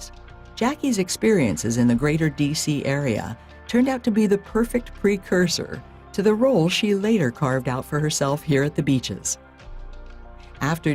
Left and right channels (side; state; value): both; identical; correlation 1.00